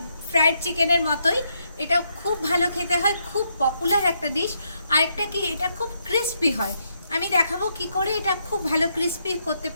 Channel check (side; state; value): both; inverted; correlation -0.77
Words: ফ্রায়েড চিকেনের মতোই, এটা খুব ভালো খেতে হয়, খুব পপুলার একটা ডিশ। আরেকটা কি, এটা খুব ক্রিস্পি হয়। আমি দেখাবো কি করে এটা খুব ভালো ক্রিস্পি করতে